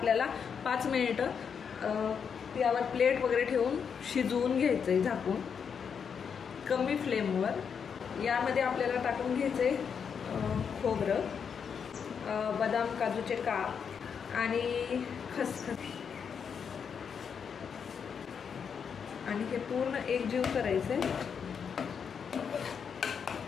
5 मिनिटं यावर प्लेट वगैरे ठेवून शिजवून घ्यायचंय झाकून कमी फ्लेमवर. यामध्ये आपल्याला टाकून घ्यायचंय खोबरं, बदाम काजूचे काप आणि खसखस आणि हे पूर्ण एकजीव करायचंय.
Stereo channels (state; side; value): quieter; right; 6.8 dB